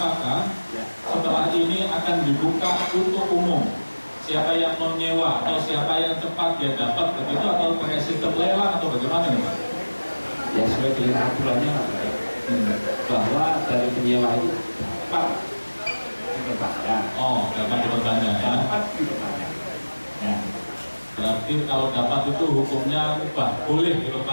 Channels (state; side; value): inverted; both; correlation -1.00